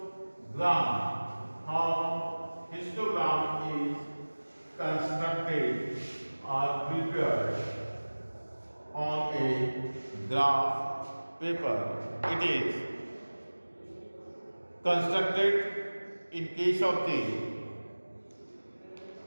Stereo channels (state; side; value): inverted; both; correlation -1.00